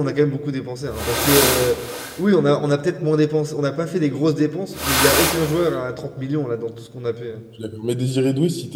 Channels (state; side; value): identical; both; correlation 1.00